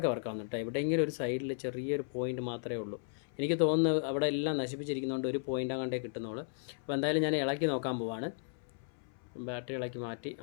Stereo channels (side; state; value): right; silent; 54 dB below the other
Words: വർക്കാവുന്നു കേട്ടോ. എവിടെയെങ്കിലും ഒരു സൈഡിൽ ചെറിയൊരു പോയിൻ്റ് മാത്രമേ ഉള്ളൂ. എനിക്ക് തോന്നുന്നത് അവിടെ എല്ലാം നശിപ്പിച്ചിരിക്കുന്നതുകൊണ്ട് ഒരു പോയിൻ്റ് അങ്ങോട്ടേ കിട്ടുന്നുള്ളൂ. അപ്പോൾ എന്തായാലും ഞാൻ ഇളക്കി നോക്കാൻ പോവാണ്. ബാറ്ററി ഇളക്കി മാറ്റി.